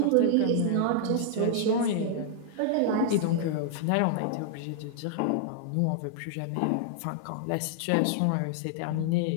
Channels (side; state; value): both; different; correlation -0.01